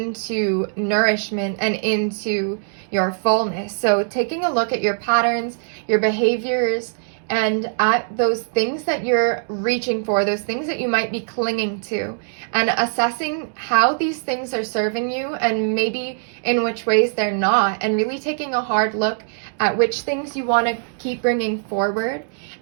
nourishment and into your fullness. So taking a look at your patterns, your behaviors, and at those things that you're reaching for, those things that you might be clinging to, and assessing how these things are serving you and maybe in which ways they're not, and really taking a hard look at which things you want to keep bringing forward,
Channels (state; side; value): silent; left; digital silence